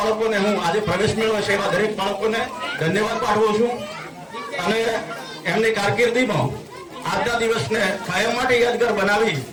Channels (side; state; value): both; identical; correlation 1.00